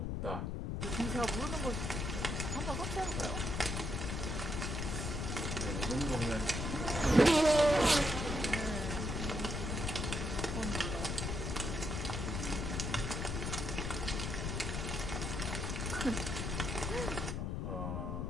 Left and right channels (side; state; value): left; noise; rumble, 2 dB below the sound